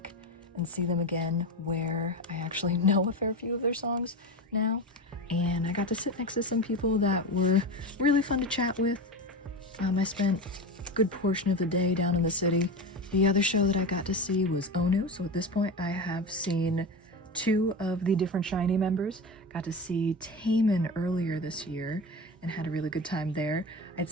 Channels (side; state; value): both; normal; correlation 0.23